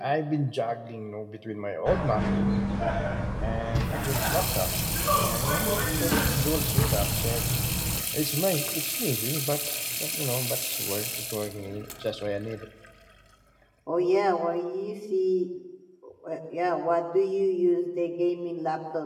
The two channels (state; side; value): identical; both; correlation 1.00